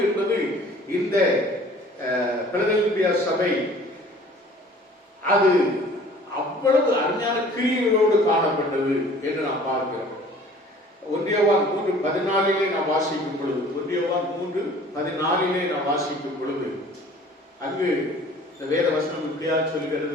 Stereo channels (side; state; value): both; normal; correlation 0.49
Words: என்பது இந்த பிலதெல்பியா சபை அது அவ்வளவு அருமையான கிரியைகளோடு காணப்பட்டது என்று நாம் பார்க்கிறோம். 1 யோவான் 3:14 நாம் வாசிக்கும் பொழுது 1 யோவான் 3:14 நாம் வாசிக்கும் பொழுது அங்கு இந்த வேத வசனம் இப்படியா